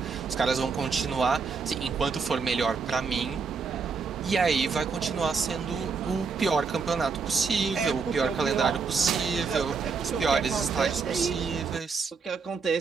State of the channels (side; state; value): left; quieter; 5.1 dB